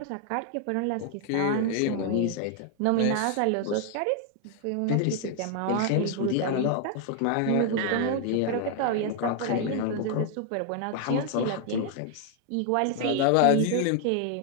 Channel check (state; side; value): different; both; correlation 0.00